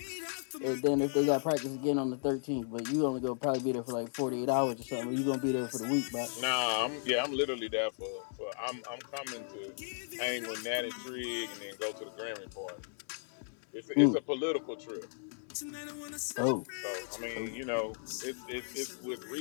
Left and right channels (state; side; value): silent; right; 54 dB below the other